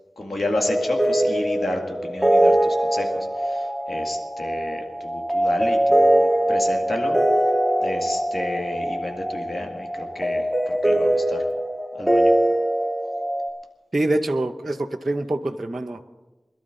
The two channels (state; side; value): normal; both; correlation 0.97